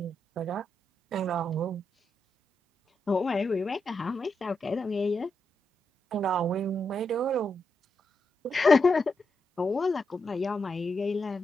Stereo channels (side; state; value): both; normal; correlation 0.84